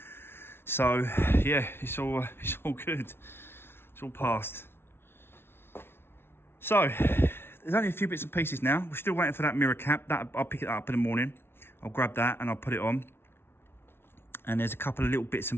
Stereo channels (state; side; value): late; right; 0.11 ms